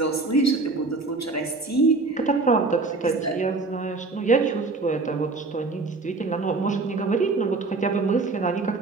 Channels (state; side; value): quieter; left; 3.7 dB